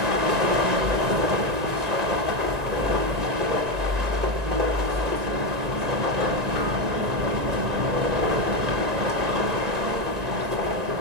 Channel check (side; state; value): left; late; 1.9 ms